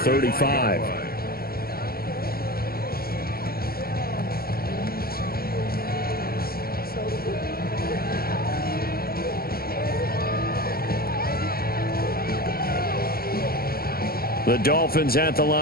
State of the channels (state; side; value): late; right; 0.44 ms